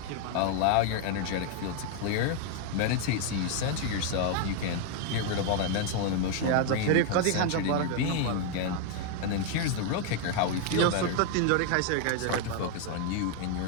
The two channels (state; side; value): different; both; correlation 0.00